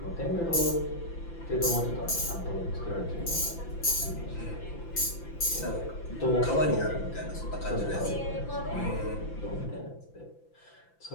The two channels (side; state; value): right; late; 5.9 ms